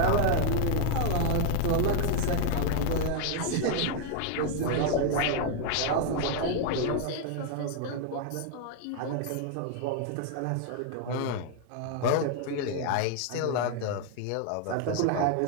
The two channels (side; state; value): both; different; correlation 0.00